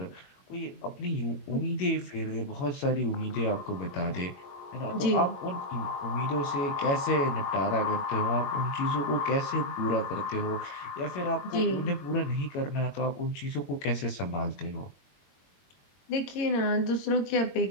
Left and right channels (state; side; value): late; right; 22 ms